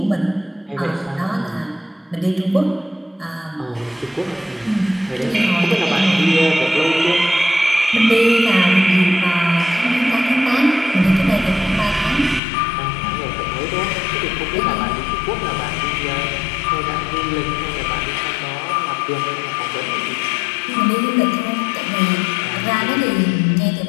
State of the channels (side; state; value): right; drops out; at 12.4 s